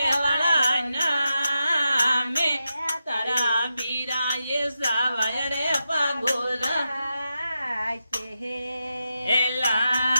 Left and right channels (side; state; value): both; inverted; correlation -0.88